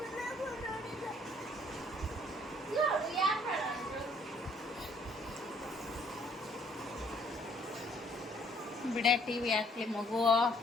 ಬಿಡೆ, ಟಿವಿ ಹಾಕ್ಲಿ ಮಗು.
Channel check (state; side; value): normal; both; correlation 0.63